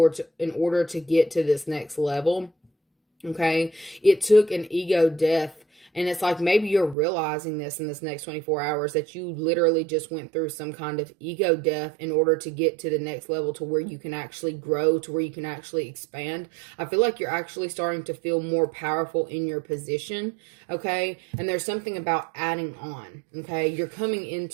in order to get to this next level, okay? It took an ego death. And it's like maybe you're realizing this in this next 24 hours, that you literally just went through some kind of ego death in order to get to the next level, to where you can actually grow, to where you can actually expand. I feel like you're actually starting to feel more powerful in your position, okay? And there's something about adding on, okay? You're coming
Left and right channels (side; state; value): left; drops out; at 7.0 s